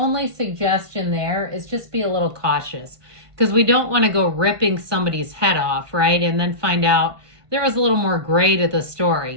suggestion there is just be a little cautious, because we don't want to go ripping somebody's head off, right? And then find out there was a little more gray to the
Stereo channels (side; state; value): left; late; 1.5 ms